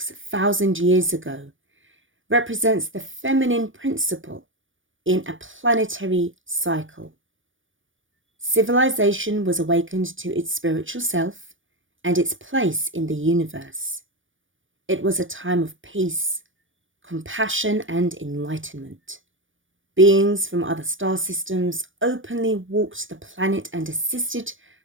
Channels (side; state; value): left; late; 0.57 ms